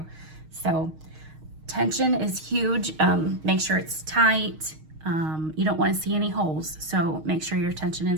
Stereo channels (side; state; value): left; late; 6.4 ms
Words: So tension is huge. Make sure it's tight. You don't want to see any holes, so make sure your tension